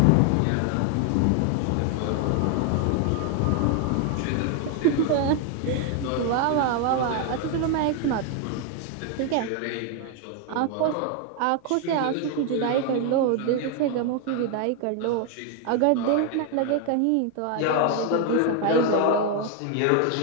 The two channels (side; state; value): both; different; correlation 0.01